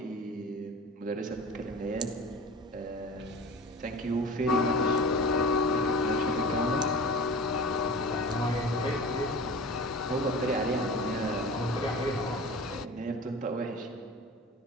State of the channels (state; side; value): normal; both; correlation 0.37